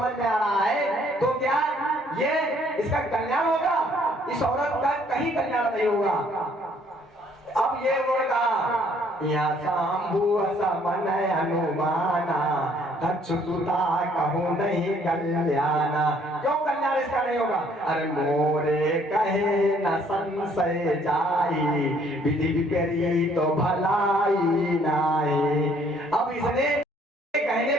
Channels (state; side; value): normal; both; correlation 0.63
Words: में आ रहा है तो क्या ये इसका कल्याण होगा? इस औरत का कहीं कल्याण नहीं होगा। अब ये उन्होंने कहा यहाँ शंभु समन अनुमाना, दक्ष सुता कहूँ नहीं कल्याणा। क्यों कल्याण इसका नहीं होगा? अरे मोरे कहे न संशय जाई, विधि विपरीत तो भलाई नाई। अब इसने कहने